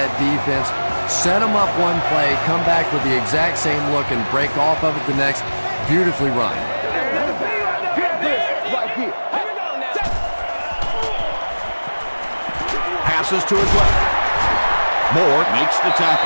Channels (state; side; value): inverted; both; correlation -1.00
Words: defense, set them up one play, come back with the exact same look, and break off of it the next. Beautifully run. Passes to his left. Moore Makes the